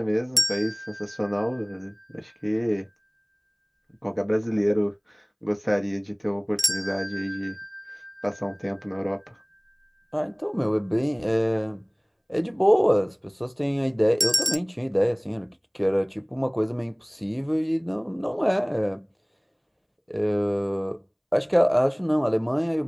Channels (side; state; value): both; identical; correlation 1.00